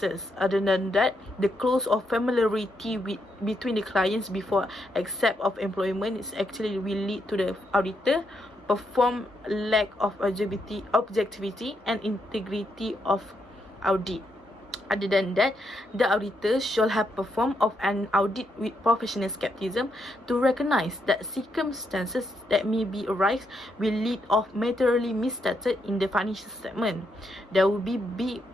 Other than that, the close of familiarity between the clients before accept of employment is actually will lead to the auditor perform lack of objectivity and integrity of audit. Other than that, the auditor shall have performed of an audit with professional skepticism to recognize that circumstances that may be arise will lead of materially misstated in the financial statement. There will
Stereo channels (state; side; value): normal; both; correlation 0.79